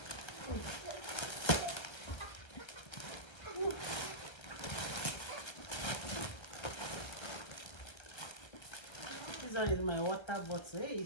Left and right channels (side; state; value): right; late; 1.3 ms